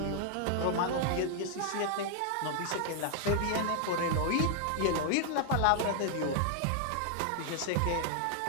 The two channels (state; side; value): different; both; correlation 0.00